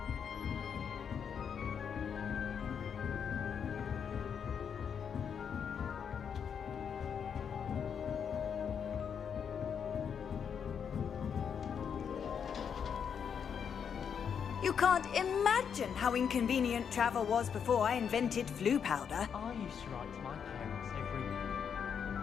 You can't imagine how inconvenient travel was before I invented flu powder. I used to write to my parents every week.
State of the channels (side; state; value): right; quieter; 7.3 dB